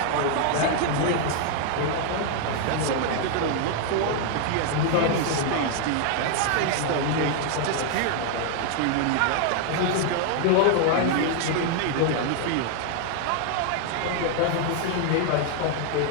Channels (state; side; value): different; both; correlation 0.00